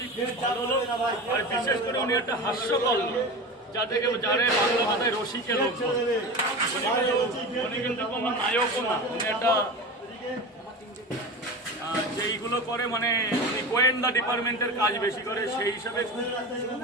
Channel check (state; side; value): normal; both; correlation 0.29